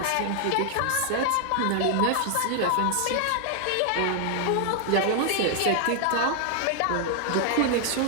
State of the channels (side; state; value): both; different; correlation 0.00